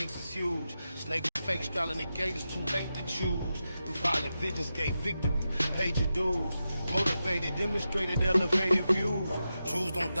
is huge. Snake fake style and the gate is too late to choose. Through violent visions gave victory, paid your dues. Motivated, demonstrated, elevated views. Truths don't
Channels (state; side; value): inverted; both; correlation -0.90